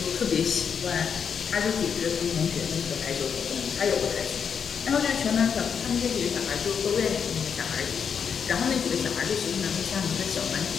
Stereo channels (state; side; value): quieter; right; 6.9 dB